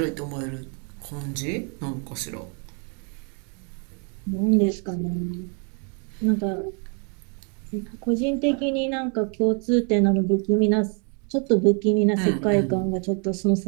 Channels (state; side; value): quieter; left; 38.3 dB